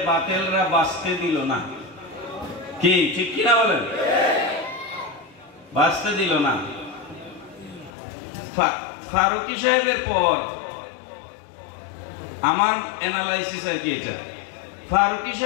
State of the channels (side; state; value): right; drops out; at 7.9 s